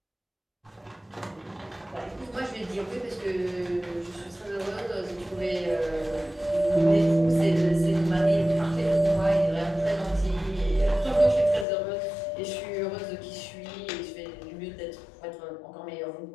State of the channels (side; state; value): right; drops out; at 11.7 s